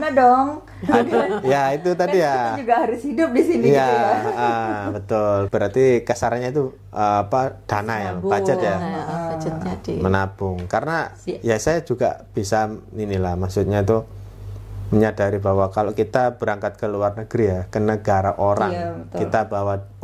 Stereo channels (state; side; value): identical; both; correlation 1.00